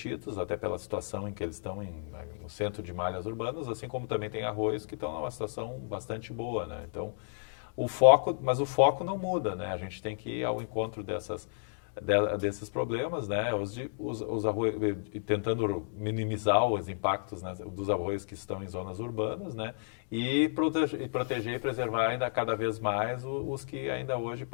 até pela situação em que eles estão no centro de malhas urbanas, assim como também tem arroios que estão numa situação bastante boa, né? Então, o foco não muda, né? A gente tem que ir ao encontro desses problemas, né? Os arroios, tentando minimizar os impactos, né, dos arroios que estão em zonas urbanas, né? E proteger e preservar ainda cada vez mais os que ainda hoje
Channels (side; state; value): right; silent; digital silence